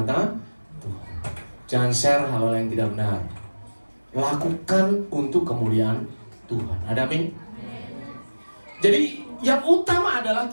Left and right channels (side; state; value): both; inverted; correlation -1.00